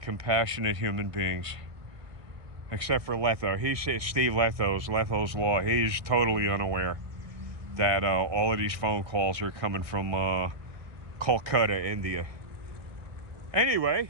compassionate human beings. Except for Letho. Steve Letho's Law. He's totally unaware that all of these phone calls are coming from Kolkata, India. Anyway,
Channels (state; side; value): late; left; 1.8 ms